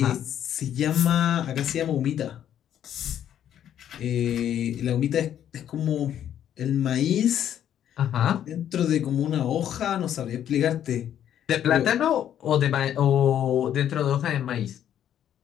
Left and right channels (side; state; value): right; quieter; 10.3 dB